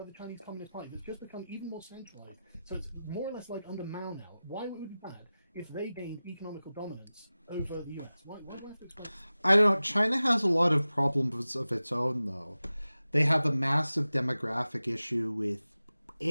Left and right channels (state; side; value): inverted; both; correlation -0.96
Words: the Chinese Communist Party that's just become even more centralized. So it's more or less like under Mao now. Why would it be bad if they gained economical dominance over the US? Why do I have to explain? I don't know. China has a lot of problems of its own, though. They have a massive demographic issue with